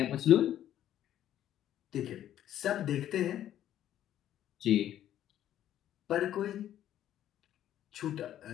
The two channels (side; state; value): right; quieter; 11.6 dB